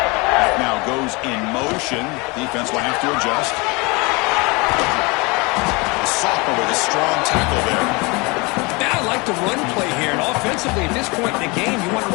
That now goes in motion. Defense will have to adjust. The sophomore with a strong tackle there. Now I like the run play here, and offensively at this point in the game, you want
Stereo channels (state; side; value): quieter; right; 27.0 dB